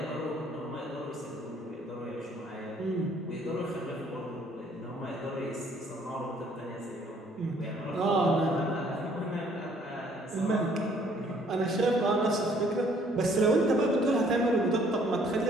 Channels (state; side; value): normal; both; correlation 0.61